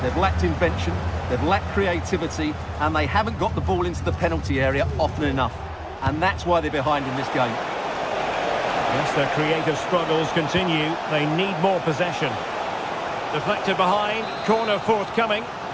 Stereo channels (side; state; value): both; identical; correlation 1.00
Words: They've lacked invention, they've lacked creativity, and they haven't got the ball into the penalty area often enough. And that's why they're behind in this game. Yes, their creative struggles continue. They need more possession. Deflected behind, corner forthcoming.